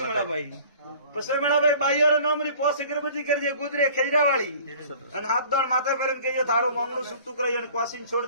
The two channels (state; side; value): inverted; both; correlation -0.48